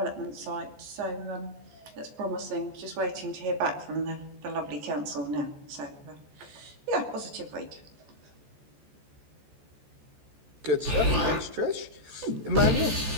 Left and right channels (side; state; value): left; late; 14 ms